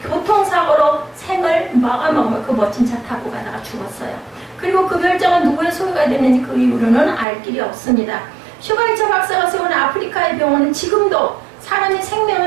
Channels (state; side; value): drops out; left; at 7.2 s